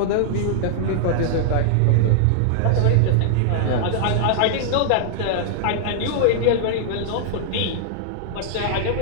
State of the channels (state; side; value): different; both; correlation -0.01